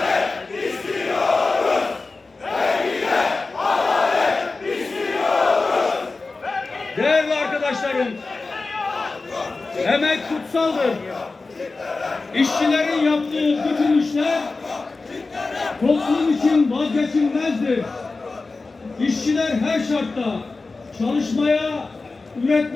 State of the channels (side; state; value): right; quieter; 3.7 dB